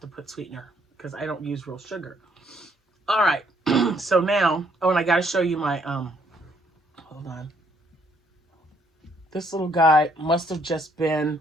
to put sweetener because I don't use real sugar. All right. So now, oh, and I got to show you my, hold on. This little guy must have just been,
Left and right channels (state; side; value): normal; both; correlation 0.68